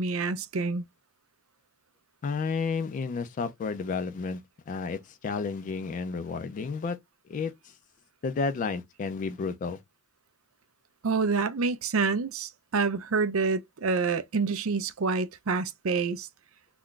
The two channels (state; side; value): normal; both; correlation 0.20